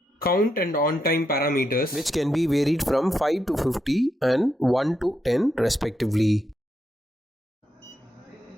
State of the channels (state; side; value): normal; both; correlation 0.82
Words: count and on time parameters, which can be varied from 5 to 50 and 1 to 10 respectively.